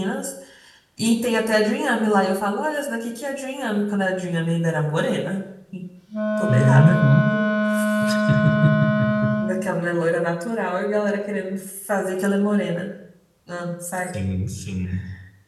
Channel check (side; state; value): both; identical; correlation 1.00